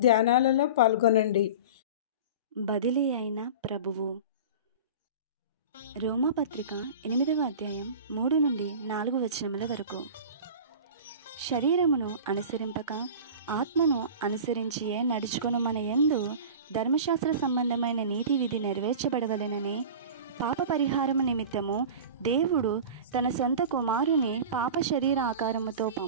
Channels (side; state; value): both; inverted; correlation -0.34